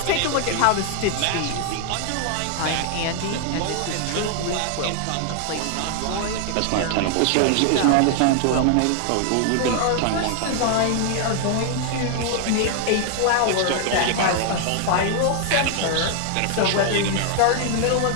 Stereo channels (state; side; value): different; both; correlation 0.00